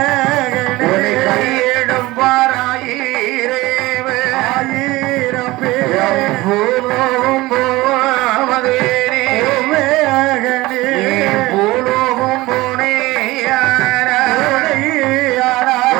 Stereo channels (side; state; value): left; quieter; 19.7 dB